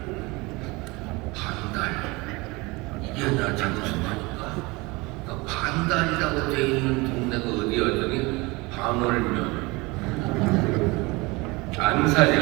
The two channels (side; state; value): left; quieter; 24.3 dB